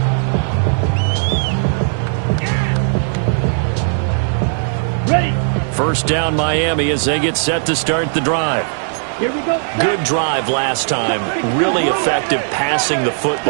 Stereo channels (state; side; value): silent; left; 68 dB below the other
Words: Ready. First down Miami as they get set to start the drive. Here we go. Good drive last time. Really effective passing the